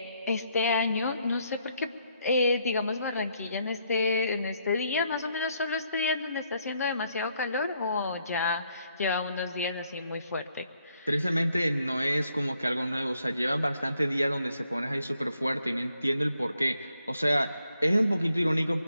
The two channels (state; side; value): inverted; both; correlation -0.73